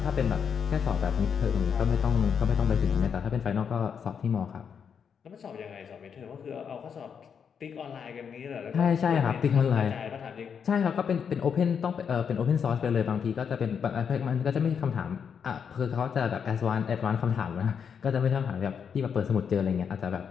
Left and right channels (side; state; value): right; quieter; 7.0 dB